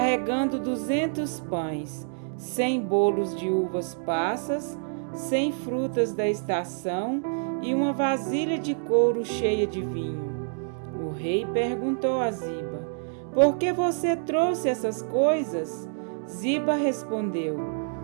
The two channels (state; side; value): silent; left; digital silence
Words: 200 pães, 100 bolos de uvas passas, 100 frutas da estação e uma vasilha de couro cheia de vinho. O rei perguntou a Ziba: "Por que você trouxe essas coisas?" Ziba respondeu: